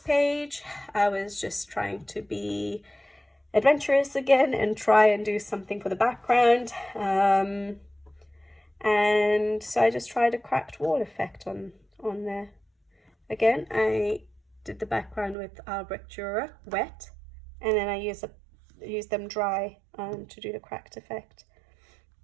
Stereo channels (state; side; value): drops out; left; at 15.4 s